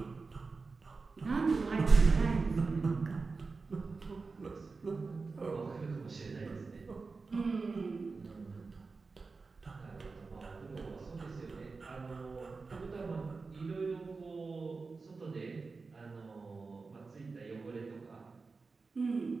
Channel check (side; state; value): left; quieter; 4.2 dB